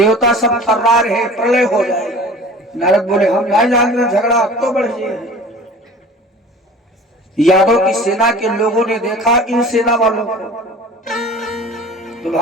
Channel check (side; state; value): both; normal; correlation 0.42